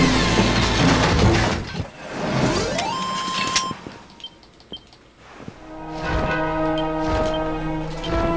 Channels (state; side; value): identical; both; correlation 1.00